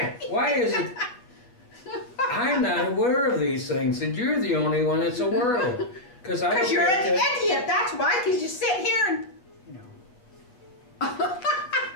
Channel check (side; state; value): right; late; 8.0 ms